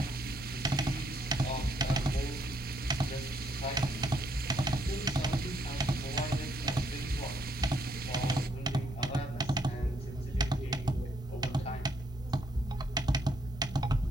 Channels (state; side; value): normal; both; correlation 0.72